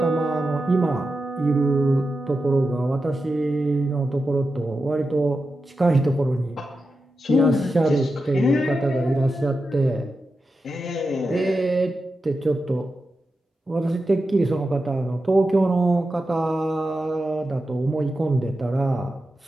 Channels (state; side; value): normal; both; correlation 0.90